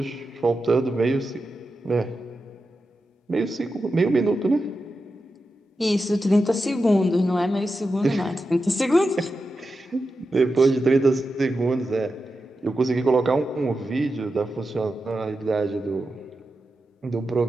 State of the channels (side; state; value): both; normal; correlation 0.90